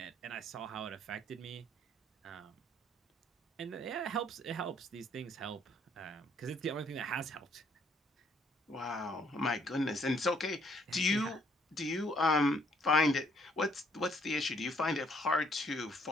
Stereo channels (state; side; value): normal; both; correlation 0.65